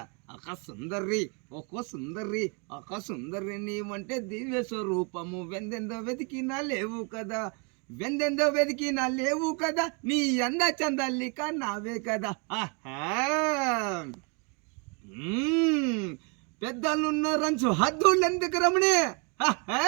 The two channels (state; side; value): quieter; left; 34.3 dB